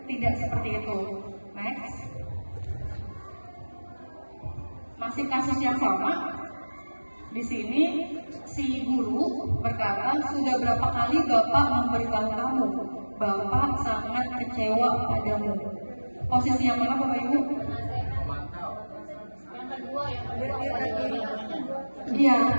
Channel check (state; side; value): inverted; both; correlation -1.00